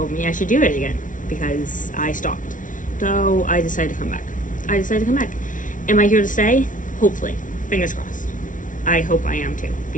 me I should do it again because I stopped. So I decided to come back. Am I here to stay? Hopefully. Fingers crossed. I hope I am too,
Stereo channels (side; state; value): right; late; 0.38 ms